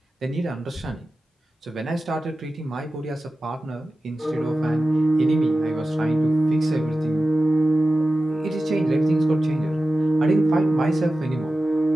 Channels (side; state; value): both; normal; correlation 0.94